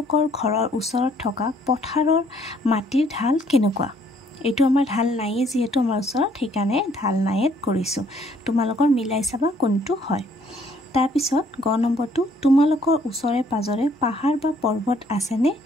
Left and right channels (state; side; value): normal; both; correlation 0.63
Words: ঘৰৰ ওচৰত থকা পথাৰৰ মাটিৰ ঢাল কেনেকুৱা? এইটো আমাৰ ঢাল নাইয়ে যিহেতু আমাৰ ওচৰত, সেইকাৰণে ঢাল নাইত কৰিছোঁ। তোমালোকৰ মিলাই চাবা কোনটো হয়। তাৰপিছত গ নম্বৰটো, তোমালোকৰ ওচৰে পাজৰে পাহাৰ বা পৰ্বত আছেনে?